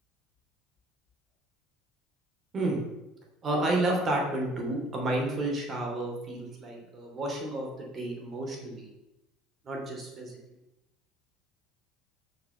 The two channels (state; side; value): normal; both; correlation 0.58